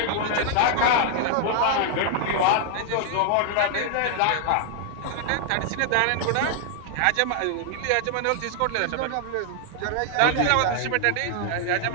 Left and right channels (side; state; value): both; different; correlation 0.00